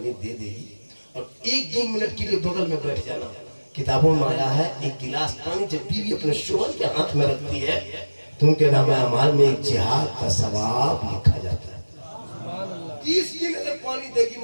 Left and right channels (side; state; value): both; inverted; correlation -1.00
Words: दे देगी और 1-2 मिनट के लिए बगल में बैठ जाना। किताबों में आया है एक गिलास पानी जब बीवी अपने शोहर के हाथ में रखती है तो उनके नामे अमाल में एक जिहाद का सवाब लिखा जाता है। 30 दिन अगर पानी देगी